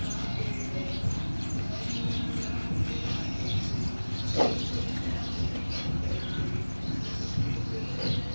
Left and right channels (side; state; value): both; inverted; correlation -1.00